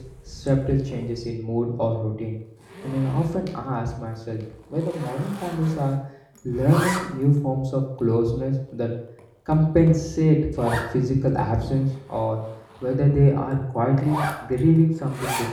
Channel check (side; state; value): both; identical; correlation 1.00